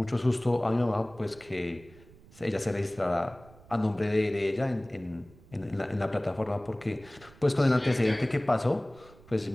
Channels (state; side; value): noise; right; rumble, 24 dB below the sound